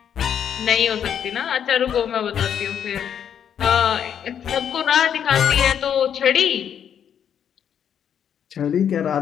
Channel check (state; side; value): quieter; right; 8.7 dB